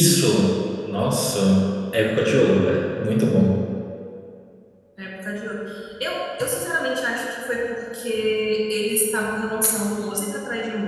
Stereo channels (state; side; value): identical; both; correlation 1.00